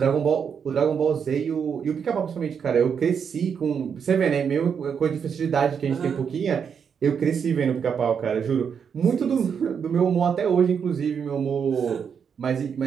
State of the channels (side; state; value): left; quieter; 7.0 dB